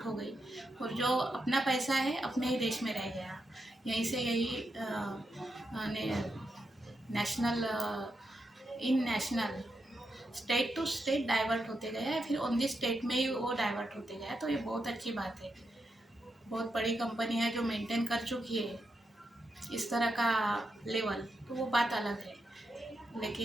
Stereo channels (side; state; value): both; normal; correlation 0.85